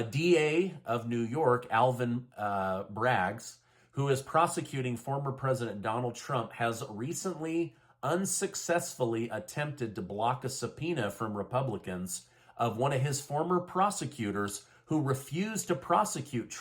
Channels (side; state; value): both; identical; correlation 1.00